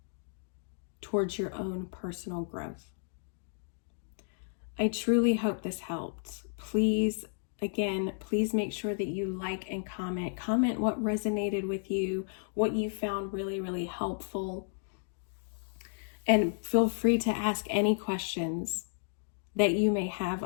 towards your own personal growth. I truly hope this helped. Please make sure that you like and comment. Comment what resonated with you, what you found really, really helpful. And feel free to ask any questions that you may have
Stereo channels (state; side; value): silent; right; digital silence